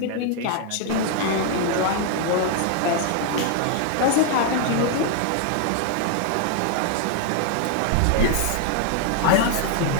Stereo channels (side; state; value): both; different; correlation 0.00